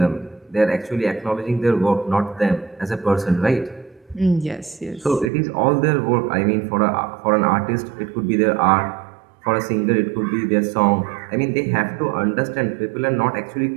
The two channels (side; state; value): left; drops out; at 5.3 s